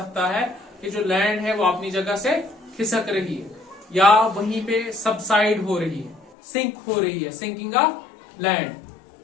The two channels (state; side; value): drops out; right; at 6.4 s